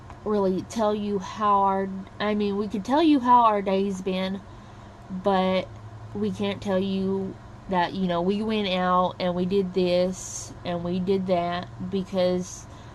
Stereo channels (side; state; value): both; identical; correlation 1.00